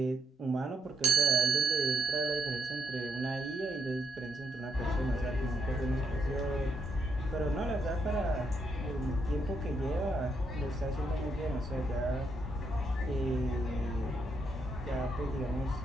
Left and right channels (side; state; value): both; normal; correlation 0.78